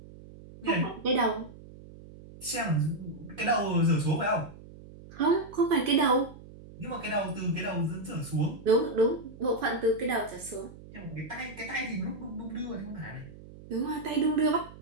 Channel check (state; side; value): noise; right; hum, 18 dB below the sound